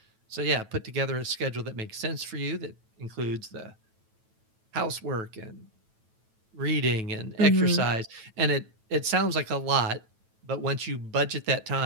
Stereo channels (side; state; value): left; late; 9.1 ms